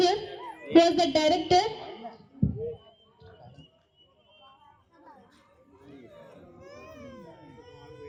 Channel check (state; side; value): identical; both; correlation 1.00